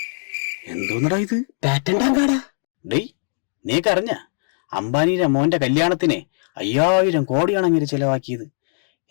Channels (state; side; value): silent; right; 65 dB below the other